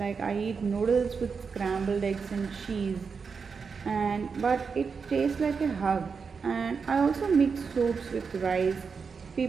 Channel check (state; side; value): quieter; left; 5.5 dB